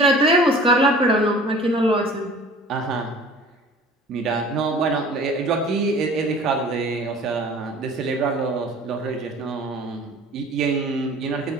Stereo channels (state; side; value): normal; both; correlation 0.46